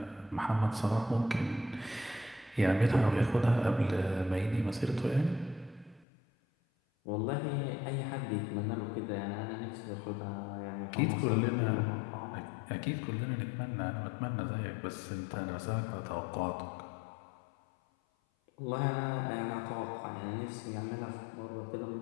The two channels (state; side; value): drops out; right; at 6.1 s